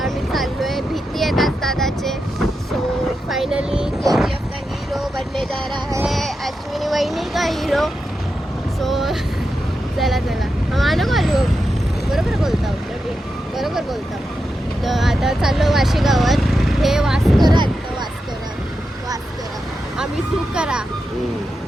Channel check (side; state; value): both; normal; correlation 0.88